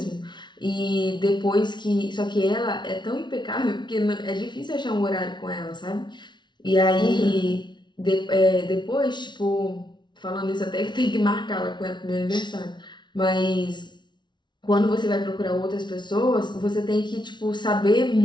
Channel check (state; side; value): late; right; 0.22 ms